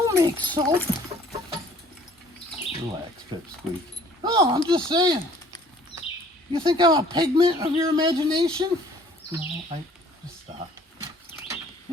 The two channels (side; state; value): both; normal; correlation 0.56